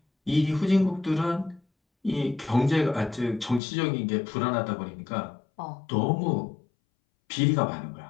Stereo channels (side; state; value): right; drops out; at 3.6 s